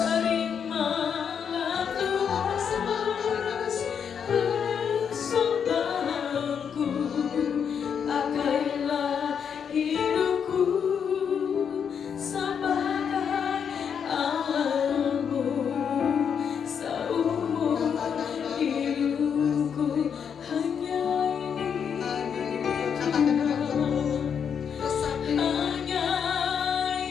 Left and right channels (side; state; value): right; quieter; 7.3 dB